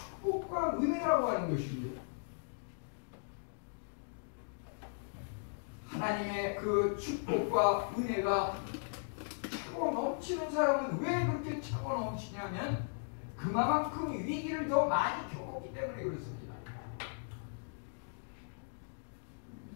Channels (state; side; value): silent; right; digital silence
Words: 은혜라고 하는 것입니다. 하나님의 그 축복과 은혜가 차고 넘치는 사람은 왜 그렇게 차고 넘치냐면 그만큼 위기를 더 많이 겪었기 때문에 그렇습니다.